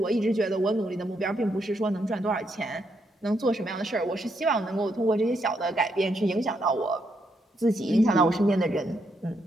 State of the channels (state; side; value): normal; both; correlation 0.78